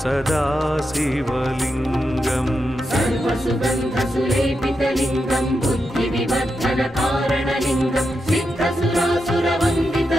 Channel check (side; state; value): both; normal; correlation 0.86